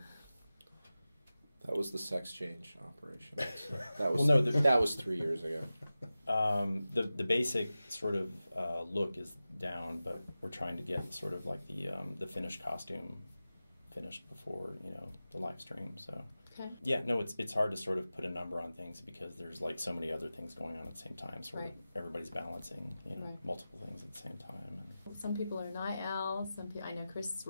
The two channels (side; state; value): both; inverted; correlation -0.95